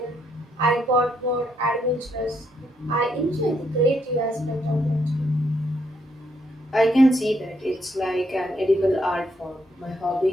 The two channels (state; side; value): normal; both; correlation 0.75